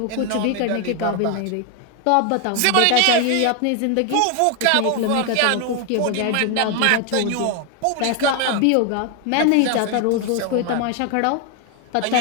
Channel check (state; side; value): different; both; correlation 0.01